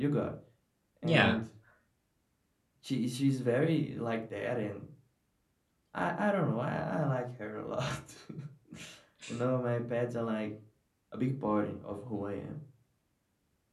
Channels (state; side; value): identical; both; correlation 1.00